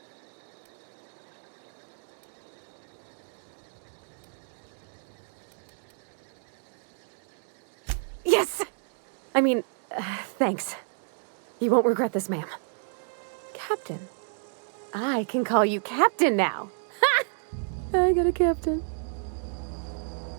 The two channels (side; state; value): left; silent; 58 dB below the other